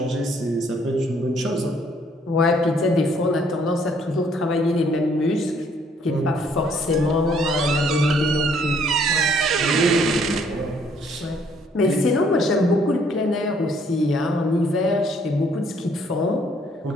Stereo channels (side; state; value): both; normal; correlation 0.64